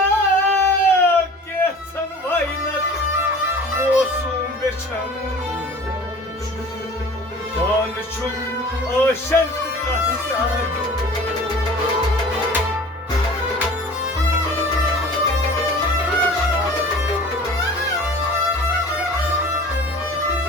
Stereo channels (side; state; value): both; normal; correlation 0.43